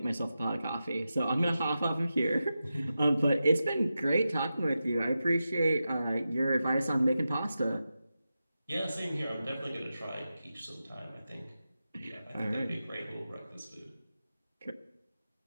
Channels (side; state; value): both; inverted; correlation -0.91